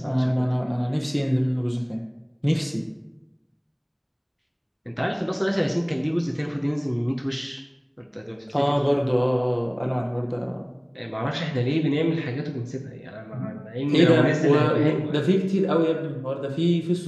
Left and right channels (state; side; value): identical; both; correlation 1.00